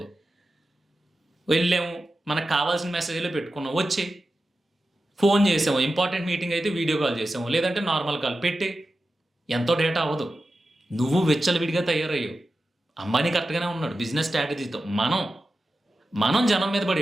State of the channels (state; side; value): normal; both; correlation 0.92